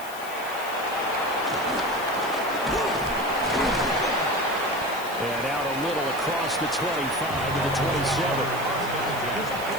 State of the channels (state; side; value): noise; left; hiss, 15 dB below the sound